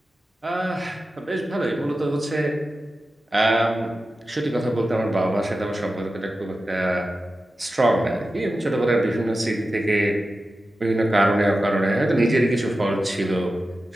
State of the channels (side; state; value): both; normal; correlation 0.93